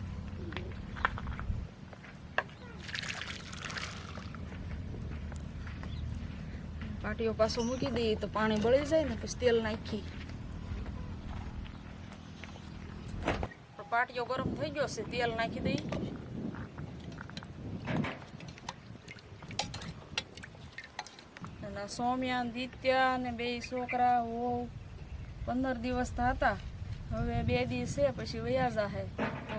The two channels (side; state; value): both; identical; correlation 1.00